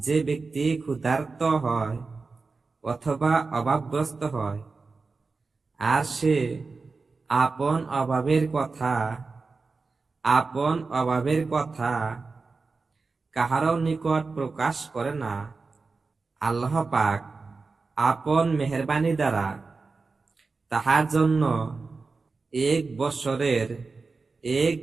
ব্যক্তি ক্ষুধার্ত হয় অথবা অভাবগ্রস্ত হয় আর সে আপন অভাবের কথা কাহারও নিকট প্রকাশ করে না, আল্লাহ পাক আপন মেহেরবানি দ্বারা তাহার জন্য এক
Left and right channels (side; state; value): left; quieter; 4.2 dB